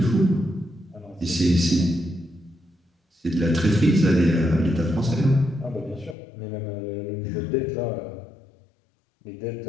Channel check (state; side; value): drops out; right; at 6.2 s